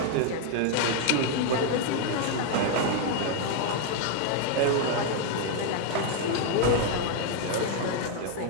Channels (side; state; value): both; different; correlation 0.00